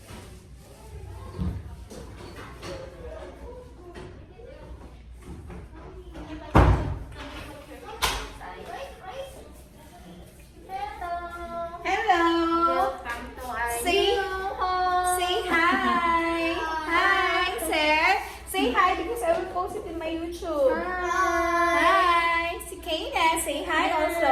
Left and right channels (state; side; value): identical; both; correlation 1.00